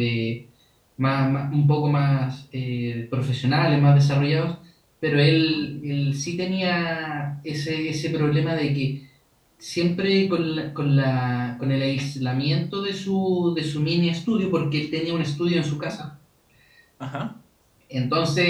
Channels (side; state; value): both; identical; correlation 1.00